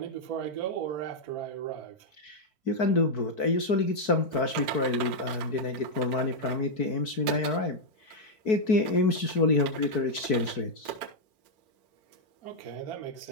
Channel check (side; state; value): right; late; 4.6 ms